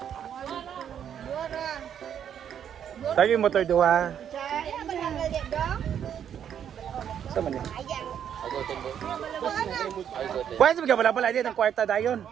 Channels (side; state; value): left; quieter; 9.0 dB